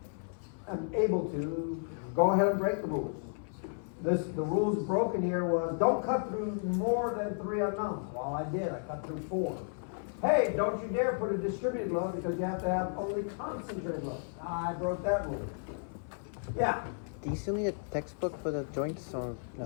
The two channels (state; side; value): silent; right; 56 dB below the other